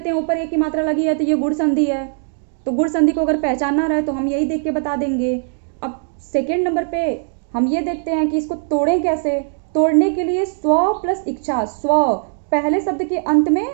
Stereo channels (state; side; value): silent; left; digital silence